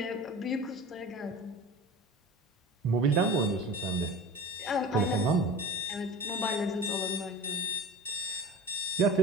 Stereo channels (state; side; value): normal; both; correlation 0.35